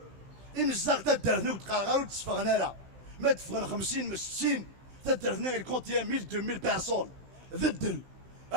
إمزاغ تدرنا وتقارغا وتصفغنا لا ما تفغنا 50 60 تدرنا غير كونتي 1000 2000 بيرسون ذدل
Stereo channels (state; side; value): late; left; 15 ms